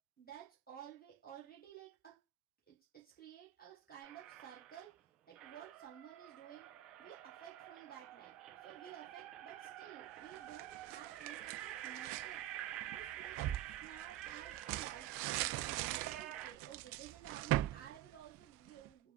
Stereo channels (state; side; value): quieter; left; 14.1 dB